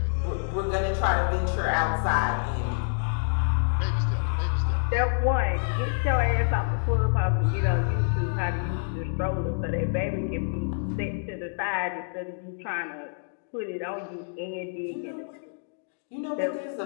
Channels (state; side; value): silent; right; digital silence